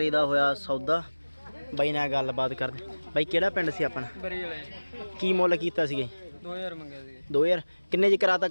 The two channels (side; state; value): both; inverted; correlation -1.00